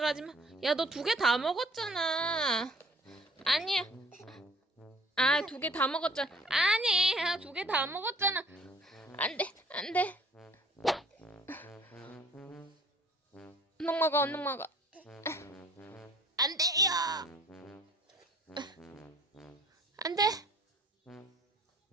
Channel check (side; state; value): both; normal; correlation 0.53